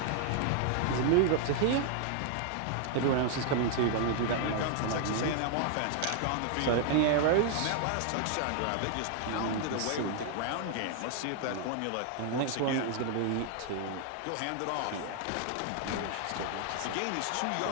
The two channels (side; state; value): both; different; correlation 0.00